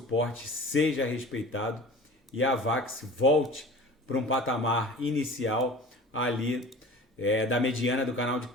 seja respeitado e a Avax volte para um patamar inicial ali da mediana do canal de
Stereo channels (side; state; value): both; normal; correlation 0.40